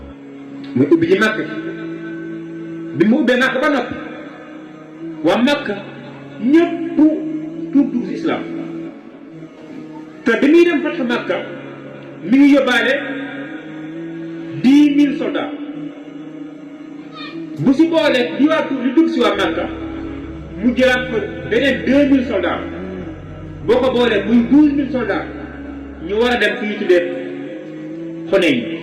muy ubbi ji Makka bi mu ubbee Makka ba noppi waa Makka ñëpp tuub dugg si islam te bi muy dem Fathu Makka mi ngi yóbbaale 10 000 soldats bu si boolee di waa tuub li dugg si waa Makka mu jëlaat fa beneen 2000 soldats boo ko boolee muy 12000 soldats ñu war a dem fi ñu tuddee Xunayn.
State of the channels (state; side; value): identical; both; correlation 1.00